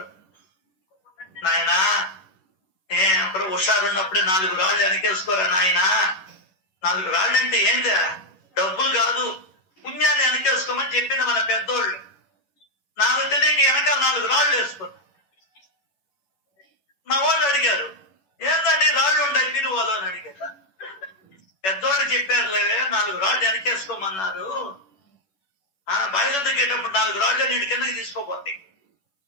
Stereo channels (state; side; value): late; right; 11 ms